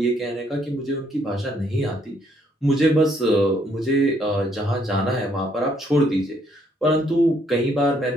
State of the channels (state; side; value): normal; both; correlation 0.69